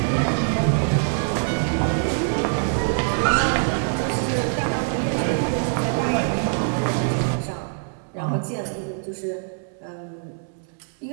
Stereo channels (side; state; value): left; silent; digital silence